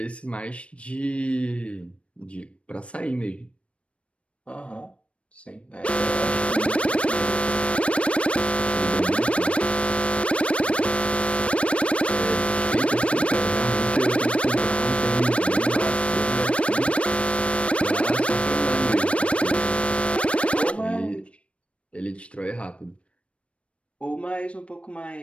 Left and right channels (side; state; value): right; late; 0.061 ms